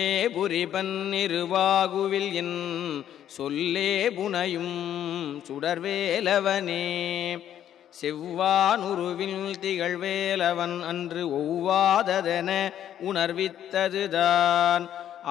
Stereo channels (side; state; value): right; quieter; 10.6 dB